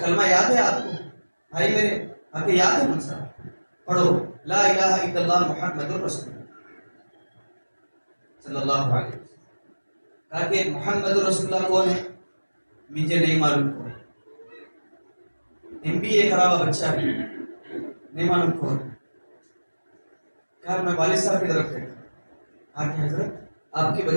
یاد ہے آپ کو؟ بھائی میرے کہا کہ یاد ہے منصا، پڑھو لا الہ الا اللہ محمد رسول اللہ صلی اللہ علیہ وسلم. کہا کہ محمد رسول اللہ کون ہے؟ مجھے نہیں معلوم کون. MBA کرا ہوا بچہ بھی نہیں معلوم کون. کہا میں والد صاحب کی طرف دیکھا، کہا کہ حضرت آپ کے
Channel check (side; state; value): both; inverted; correlation -1.00